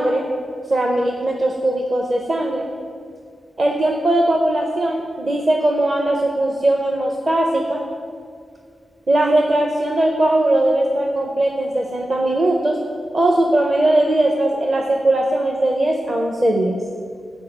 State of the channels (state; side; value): normal; both; correlation 0.92